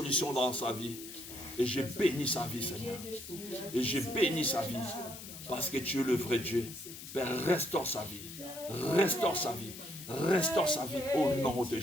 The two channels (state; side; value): noise; left; hiss, 12 dB below the sound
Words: dans sa vie. Et je bénis sa vie, Seigneur. Et je bénis sa vie. Parce que tu es le vrai Dieu. Père, restaure sa vie. Restaure sa vie. Restaure sa vie au nom de